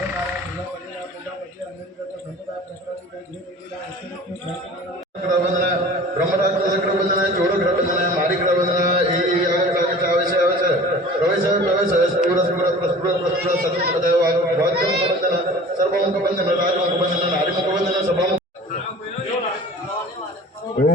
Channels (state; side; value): normal; both; correlation 0.43